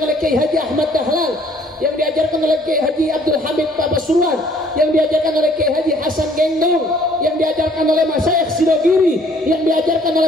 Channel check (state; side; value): normal; both; correlation 0.59